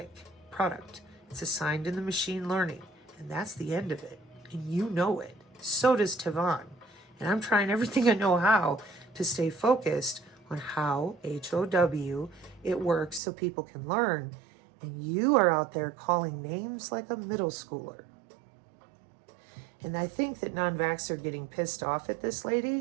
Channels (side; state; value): left; drops out; at 13.2 s